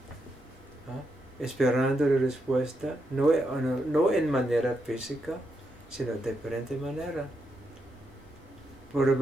esperando la respuesta, no en manera física, sino de diferente manera.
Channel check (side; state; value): both; normal; correlation 0.82